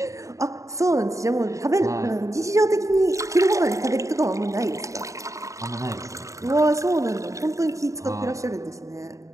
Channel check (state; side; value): late; left; 0.15 ms